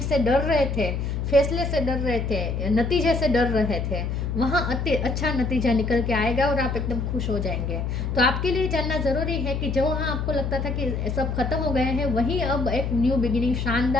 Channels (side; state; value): left; noise; hum, 2 dB below the sound